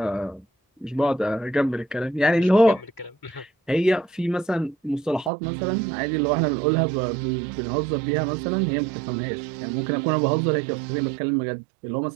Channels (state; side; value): drops out; left; at 5.3 s